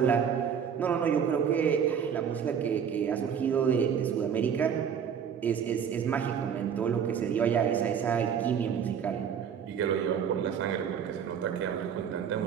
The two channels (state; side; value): quieter; left; 7.7 dB